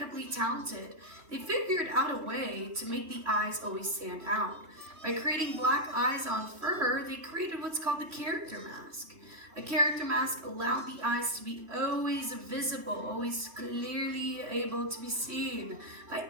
talented. They figured out a way to make the eyes always stand out. By creating black eyes on fur, they created what's called the character mask. A character mask allowed the eyes to be always visible, always clearly able to be seen by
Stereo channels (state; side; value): late; left; 3.1 ms